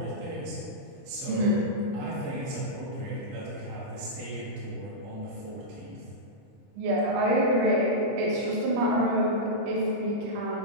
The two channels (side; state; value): left; late; 29 ms